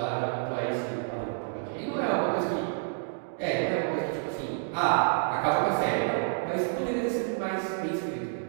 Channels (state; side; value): silent; left; digital silence